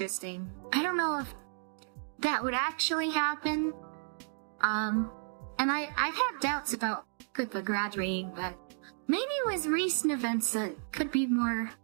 I don't know if that would actually happen. And I've had doubts about Pippa graduating, but maybe with recent events it could be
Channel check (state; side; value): silent; left; digital silence